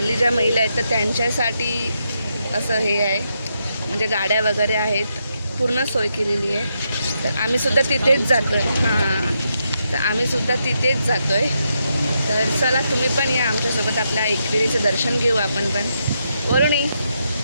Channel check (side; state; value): both; inverted; correlation -0.81